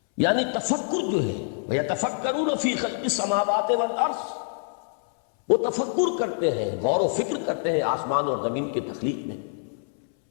یعنی تفکر جو ہے ویتفکرون فی خلق السماوات والارض، وہ تفکر کرتے ہیں، غور و فکر کرتے ہیں آسمان اور زمین کی تخلیق میں،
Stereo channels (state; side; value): silent; right; 61 dB below the other